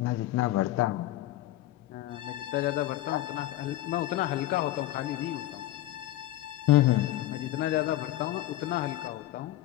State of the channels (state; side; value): quieter; right; 14.9 dB